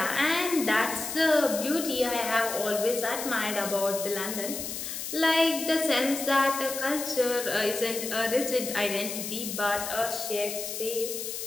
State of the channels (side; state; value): left; noise; hiss, 6 dB below the sound